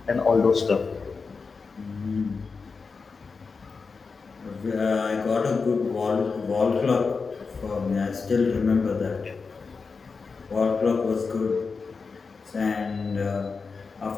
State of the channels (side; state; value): right; quieter; 4.8 dB